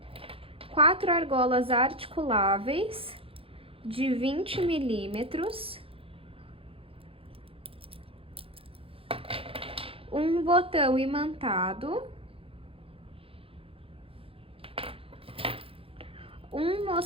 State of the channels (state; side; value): late; left; 0.27 ms